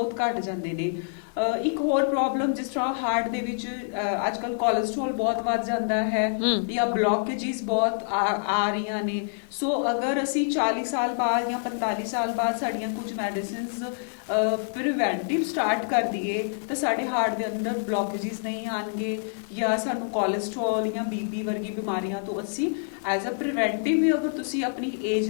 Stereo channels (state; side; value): silent; right; 60 dB below the other